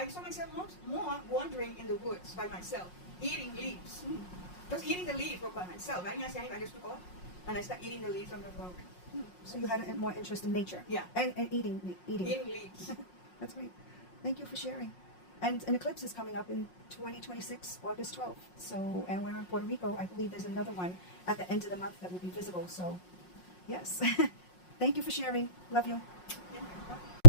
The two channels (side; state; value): right; late; 5.5 ms